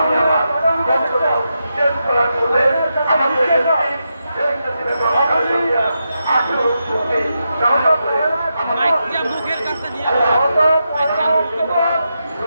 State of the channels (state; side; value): inverted; both; correlation -0.86